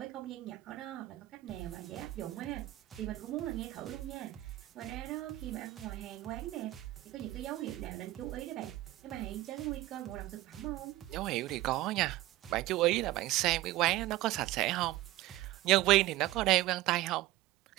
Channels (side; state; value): left; quieter; 16.7 dB